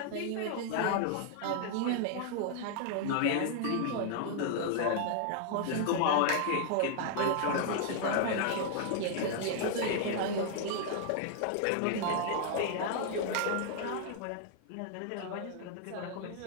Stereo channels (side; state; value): both; different; correlation 0.00